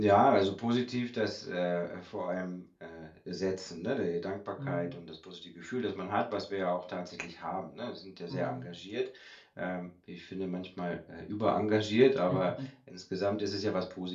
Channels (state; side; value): identical; both; correlation 1.00